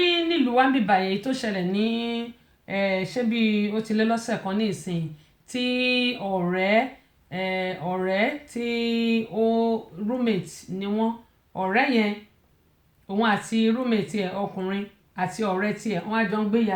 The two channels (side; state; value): both; identical; correlation 1.00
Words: nílùú wa ń bíbà yẹn tó ṣẹlẹ̀ ní ṣé bí ó ti lé lọ́sẹ̀ kan ní ìsìn tí ọ̀rẹ́ tí ó roommate ni wọ́n ọ̀rẹ́ yẹn òun àti roommate ẹ̀ ọkùnrin àti ọ̀rẹ́ tiẹ̀ wọ́n á jọ ń gbé